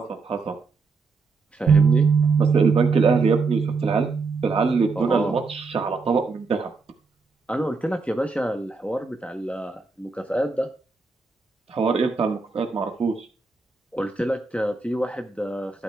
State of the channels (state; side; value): quieter; left; 4.3 dB